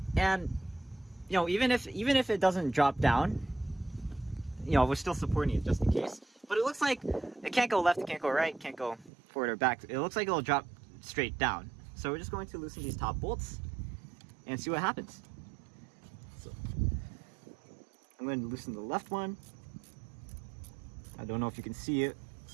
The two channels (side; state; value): left; drops out; at 9.1 s